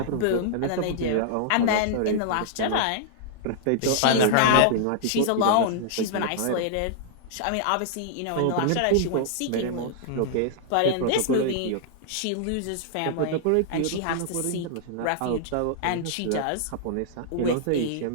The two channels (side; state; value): both; different; correlation -0.01